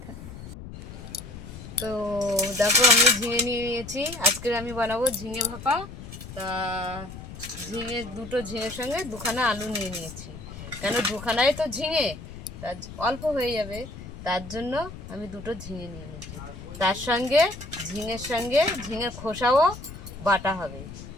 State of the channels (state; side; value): noise; left; rumble, 12 dB below the sound